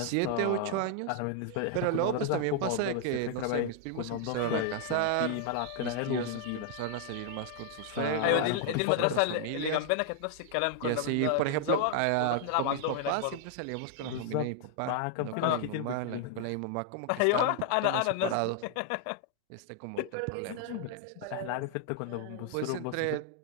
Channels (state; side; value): different; both; correlation 0.00